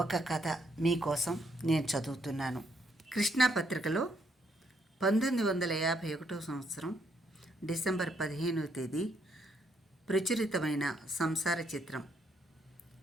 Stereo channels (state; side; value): normal; both; correlation 0.73